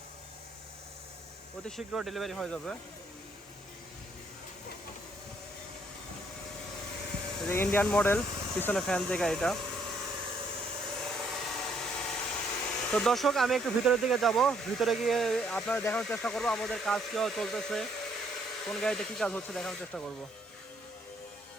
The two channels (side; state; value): both; normal; correlation 0.68